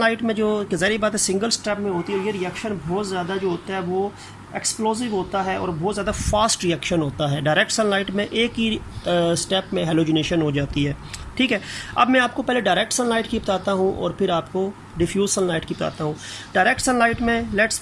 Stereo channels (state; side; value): identical; both; correlation 1.00